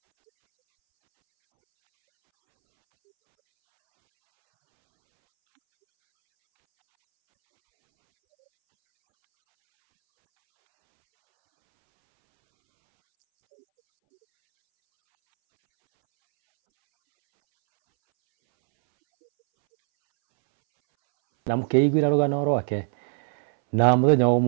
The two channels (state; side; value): silent; left; 65 dB below the other